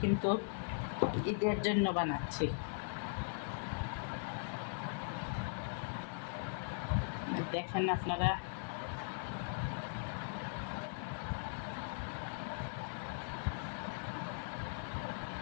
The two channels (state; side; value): silent; right; 51 dB below the other